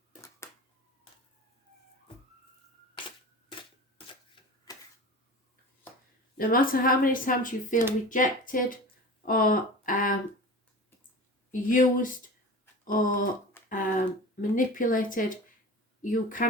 No matter how many times you feel rejected or used or manipulated, you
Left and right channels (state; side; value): normal; both; correlation 0.34